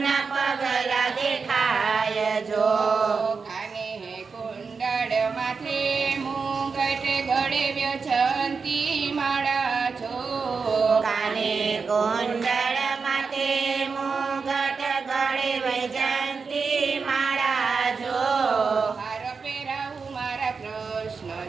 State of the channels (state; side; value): quieter; left; 5.1 dB